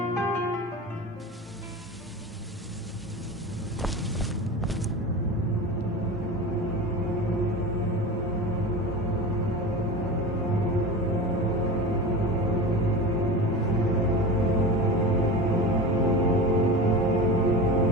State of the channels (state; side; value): normal; both; correlation 0.28